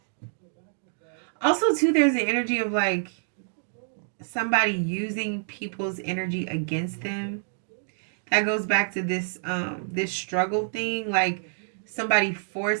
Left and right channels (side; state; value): left; silent; digital silence